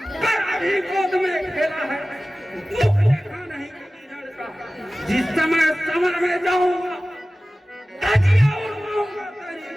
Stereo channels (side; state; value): both; normal; correlation 0.97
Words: कर अभी गोद में खेला है, दुख देखा नहीं कभी लड़का। जिस समय समर में जाऊंगा धजिया उड़वाऊंगा तेरी,